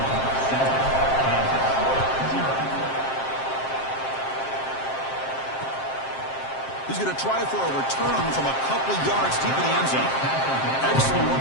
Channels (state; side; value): late; right; 7.6 ms